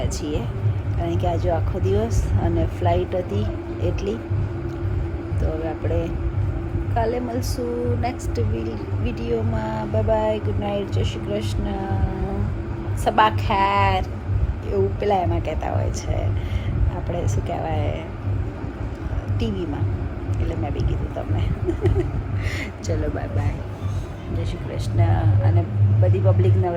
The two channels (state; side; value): identical; both; correlation 1.00